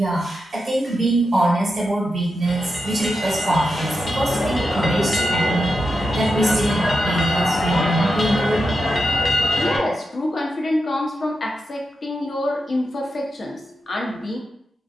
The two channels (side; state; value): both; normal; correlation 0.88